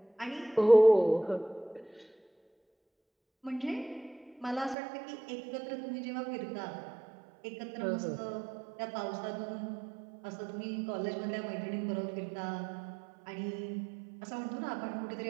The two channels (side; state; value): left; drops out; at 4.8 s